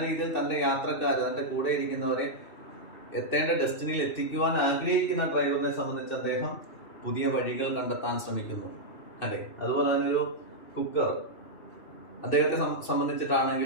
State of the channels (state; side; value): late; right; 2.6 ms